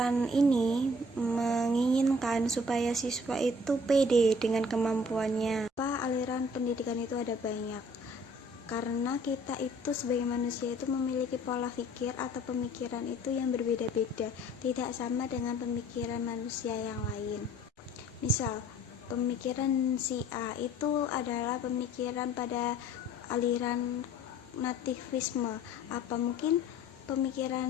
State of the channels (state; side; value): normal; both; correlation 0.54